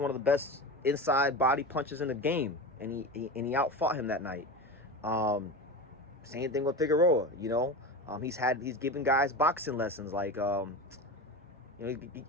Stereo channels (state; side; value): normal; both; correlation 0.26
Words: of the best inside body punchers in the game, and he outfought him that night. Same thing with Figueroa. You know, he's given guys boxing lessons. Like, you know,